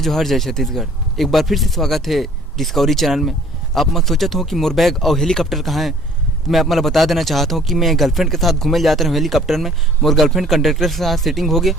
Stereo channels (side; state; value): both; normal; correlation 0.54